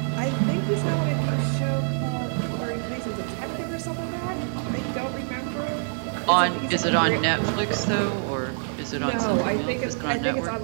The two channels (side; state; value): left; silent; 61 dB below the other